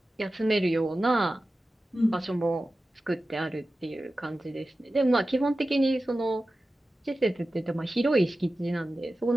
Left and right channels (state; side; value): normal; both; correlation 0.94